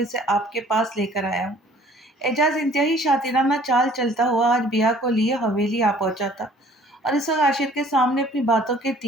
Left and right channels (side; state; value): both; normal; correlation 0.54